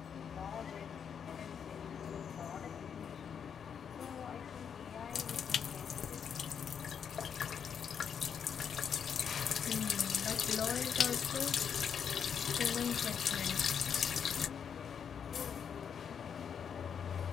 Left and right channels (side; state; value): right; quieter; 7.5 dB